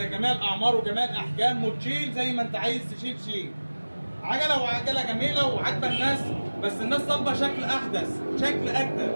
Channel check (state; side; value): inverted; both; correlation -1.00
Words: الأعمار وجميع الأحجام وتشيل زي ما أنت عايز تشيل شيل. عجله جميله وعاجبه الناس، بس الناس طالبه شكل احدث، شكل اجدد.